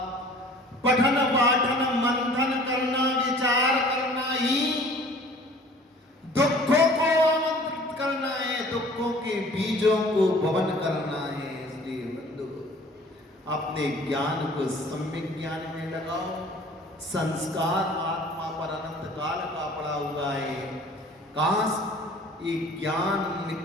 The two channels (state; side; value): normal; both; correlation 0.49